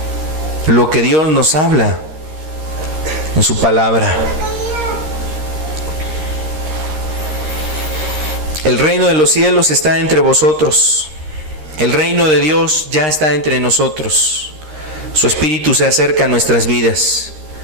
Lo que Dios nos habla en su palabra. El reino de los cielos está entre vosotros. El reino de Dios ya está entre nosotros. Su Espíritu se acerca a nuestras vidas.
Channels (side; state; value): left; late; 13 ms